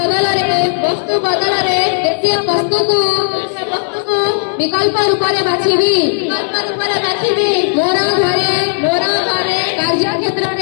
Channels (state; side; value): silent; right; digital silence